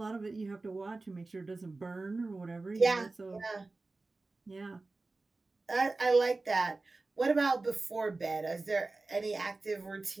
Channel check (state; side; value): quieter; left; 3.4 dB